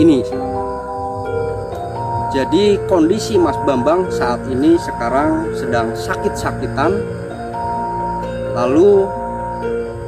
Jadi kondisi Mas Bambang saat ini sekarang sedang sakit-sakitan, lalu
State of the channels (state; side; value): identical; both; correlation 1.00